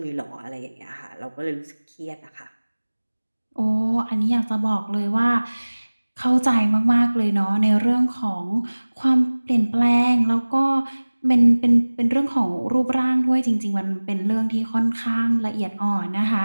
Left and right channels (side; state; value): both; inverted; correlation -1.00